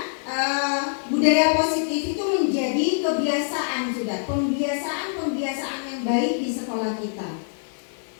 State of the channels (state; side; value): silent; right; digital silence